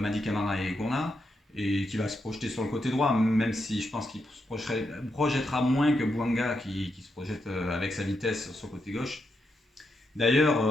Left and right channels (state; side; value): normal; both; correlation 0.83